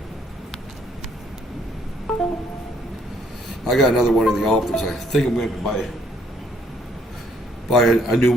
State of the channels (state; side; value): normal; both; correlation 0.66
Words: I got another one in the office. I think I'm going to buy a new